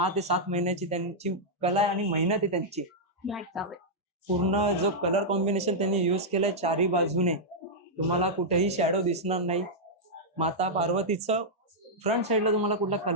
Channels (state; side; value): normal; both; correlation -0.07